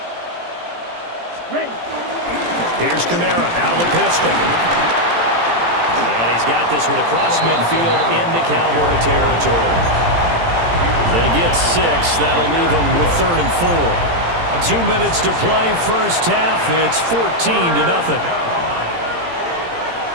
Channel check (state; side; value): late; left; 17 ms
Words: Ready. Here's Kamara out of the pistol. And he's got this one across midfield into Cowboy territory. They get 6. That'll leave them with 3rd and 4. 2 minutes to play first half. It's 14-0.